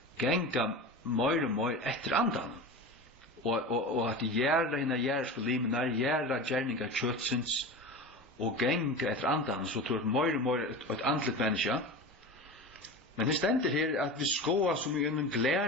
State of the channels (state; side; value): normal; both; correlation 0.29